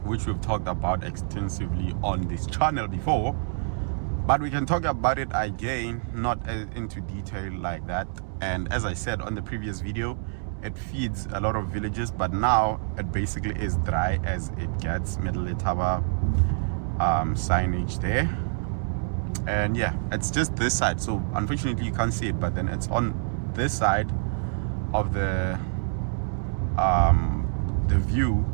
which we've talked about extensively on this channel before, but we can talk about it again, not into detail like that. And as I said on the previous video, it feeds a lot of villages, but now it basically is dry as it gets. Middle Letaba signage there, and yeah, it's just this side, so unfortunately you can't see it, but then it's on this side of the view.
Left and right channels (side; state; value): left; silent; 60 dB below the other